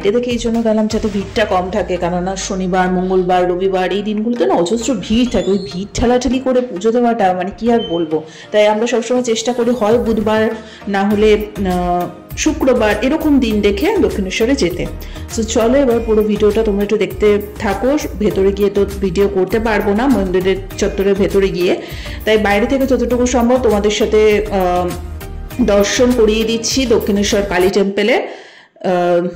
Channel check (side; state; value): both; identical; correlation 1.00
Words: থেকে এই জন্য গেলাম যাতে ভিড়টা কম থাকে, কেননা শনিবার মঙ্গলবার রবিবার এই দিনগুলোতে না অজস্র ভিড় থাকে। ওই ভিড় ঠেলাঠেলি করে পুজো দেওয়াটা মানে কি আর বলবো। তাই আমরা সবসময় চেষ্টা করি হয় বুধবার না হলে শুক্রবার এরকম দিন দেখে দক্ষিণেশ্বরে যেতে। সো চলো এবার পুরো ভিডিওটা তোমরা একটু দেখতে থাকো। ভেতরে গিয়ে তো ভিডিও করতে পারবো না মন্দিরের চত্বরের ভেতরে গিয়ে, তাই বাইরে থেকে যতটুকু সম্ভব তোমাদের সাথে দর্শন করিয়ে দিচ্ছি দক্ষিণেশ্বর কালী টেম্পলে।